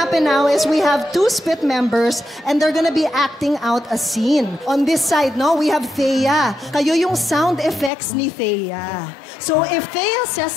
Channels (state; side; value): drops out; right; at 7.9 s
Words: now is we have two spit members and they're gonna be acting out a scene. On this side, no, we have Thea. Kayo yung sound effects ni Thea. So if Thea says